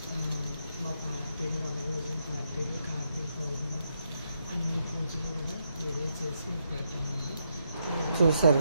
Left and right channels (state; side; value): inverted; both; correlation -0.80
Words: మా పార్టీలు, వనభోజన పార్టీలు, కార్తీక పౌర్ణమి అన్ని పూజలు కూడా వీడియో చేసి పెడతామండి. చూసారు